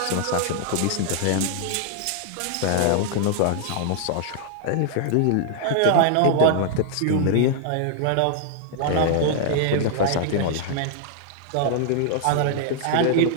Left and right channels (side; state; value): both; different; correlation 0.00